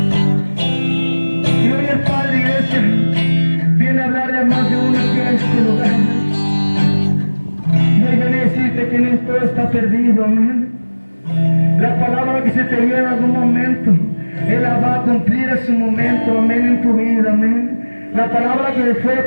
Y hoy el Padre, iglesia, viene a hablarle a más de uno aquí a este lugar. Y hoy viene a decirte que no todo está perdido, amén. La palabra que se te dio en algún momento, Él la va a cumplir a su momento, amén, en tu vida, amén. La palabra que fue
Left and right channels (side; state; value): both; inverted; correlation -1.00